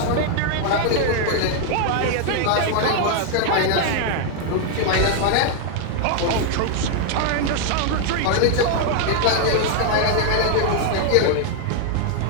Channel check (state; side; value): different; both; correlation 0.00